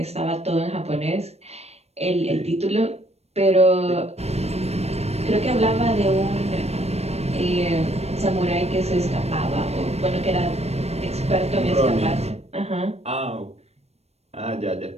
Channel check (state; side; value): late; left; 0.31 ms